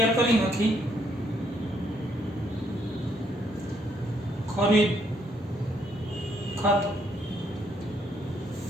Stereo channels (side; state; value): both; normal; correlation 0.72